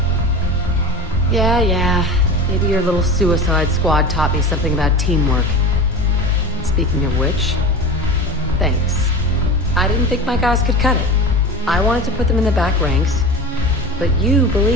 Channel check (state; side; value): normal; both; correlation 0.31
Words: Yeah. Maybe your little suicide squad taught me something about teamwork. Speaking of which, thanks. I didn't think my guys could cut it. I wanted to put them in the back ranks, but you